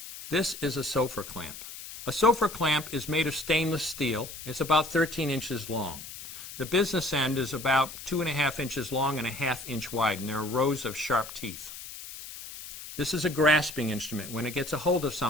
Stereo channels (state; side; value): noise; left; hiss, 12 dB below the sound